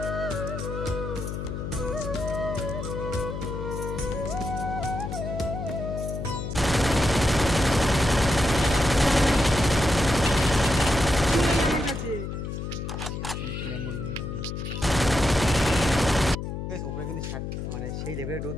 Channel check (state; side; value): noise; left; hum, 5 dB below the sound